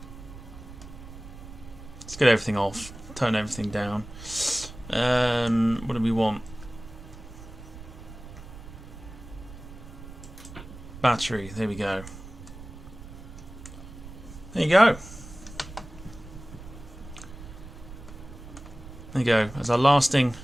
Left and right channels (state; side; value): noise; right; rumble, 15 dB below the sound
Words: get everything off, turn everything down. What do we want? Battery, there we go. There you go. There you go. As our lasting